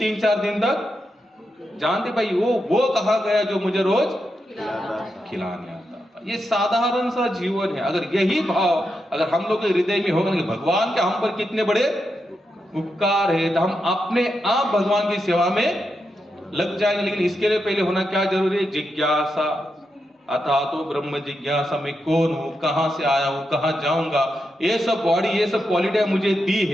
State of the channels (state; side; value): normal; both; correlation 0.86